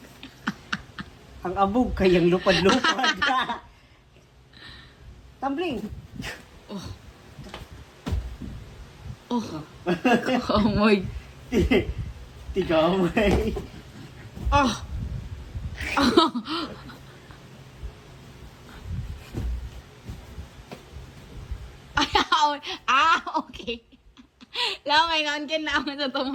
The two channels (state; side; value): identical; both; correlation 1.00